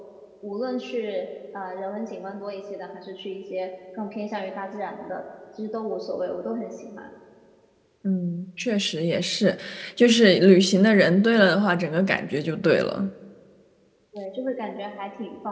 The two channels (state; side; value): identical; both; correlation 1.00